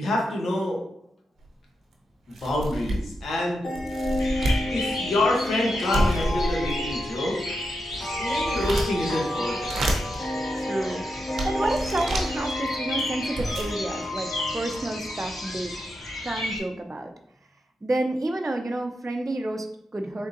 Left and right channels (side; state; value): both; normal; correlation 0.86